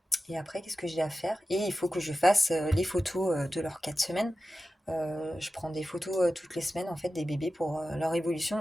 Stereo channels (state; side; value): normal; both; correlation 0.93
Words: qu'est-ce que j'ai à faire? Et il faut que je fasse les photos de leurs 4 semaines. Je prends des photos toutes les semaines, en fait, des bébés pour leur